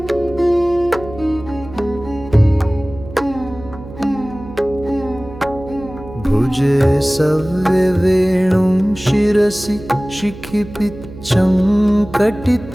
भुजे सव्यवेणुं शिरसि शिखिपिच्चं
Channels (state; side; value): noise; right; hum, 15 dB below the sound